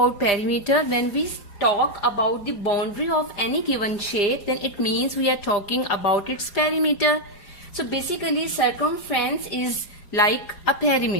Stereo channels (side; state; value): right; late; 4.9 ms